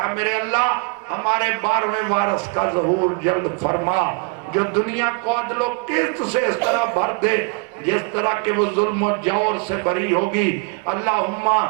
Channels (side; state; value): left; quieter; 31.9 dB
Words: میرے اللہ ہمارے 12ویں وارث کا ظہور جلد فرما جو دنیا کو عدل و قسط سے اس طرح بھر دے جس طرح کہ وہ ظلم و جور سے بری ہوگی. اللہم